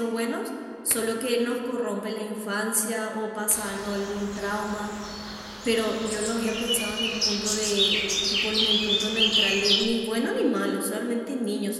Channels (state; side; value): identical; both; correlation 1.00